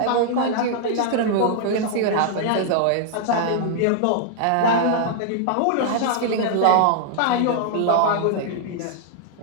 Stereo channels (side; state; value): both; different; correlation -0.01